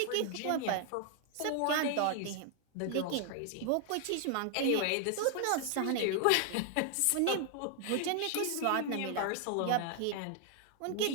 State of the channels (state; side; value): different; both; correlation 0.00